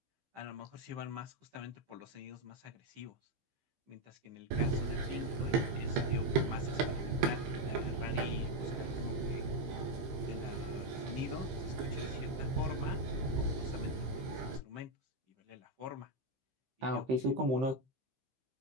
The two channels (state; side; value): late; left; 15 ms